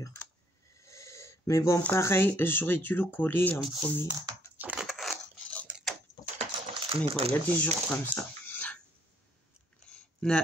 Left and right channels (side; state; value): both; normal; correlation 0.66